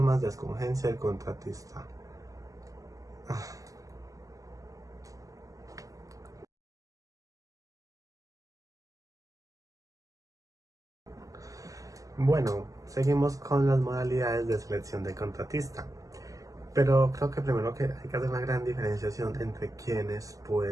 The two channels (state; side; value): late; left; 0.16 ms